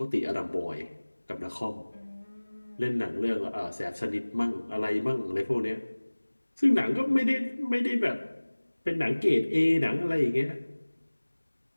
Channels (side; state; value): both; inverted; correlation -1.00